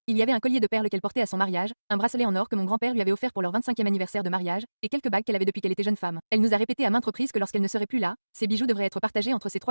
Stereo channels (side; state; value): both; inverted; correlation -1.00